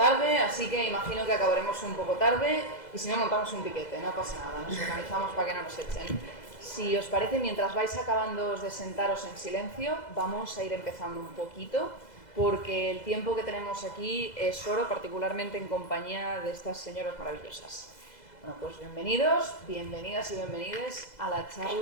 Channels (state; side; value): late; right; 2.0 ms